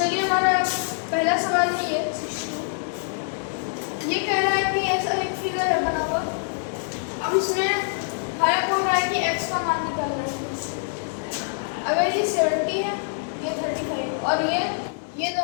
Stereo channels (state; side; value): silent; right; 62 dB below the other